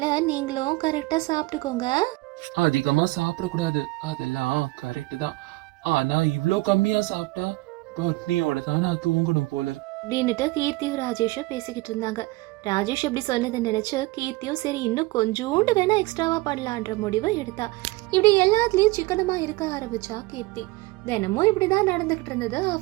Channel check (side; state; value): left; quieter; 21.1 dB